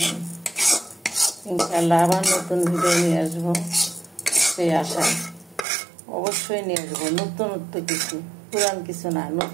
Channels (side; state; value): left; drops out; at 5.7 s